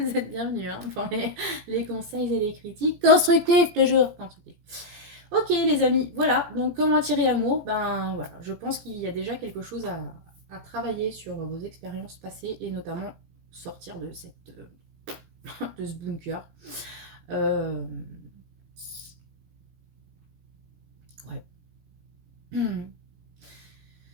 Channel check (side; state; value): left; late; 17 ms